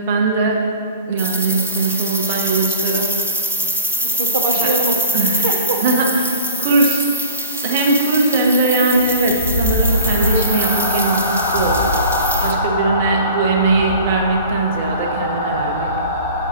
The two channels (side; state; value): both; inverted; correlation -0.39